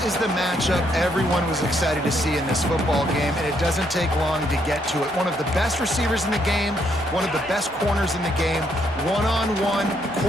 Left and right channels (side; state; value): both; normal; correlation 0.73